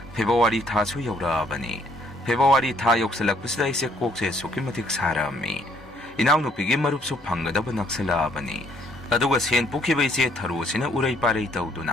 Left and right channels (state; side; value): normal; both; correlation 0.66